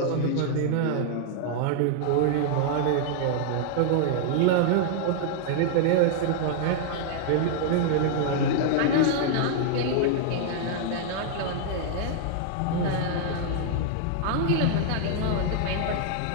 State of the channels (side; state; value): both; different; correlation -0.01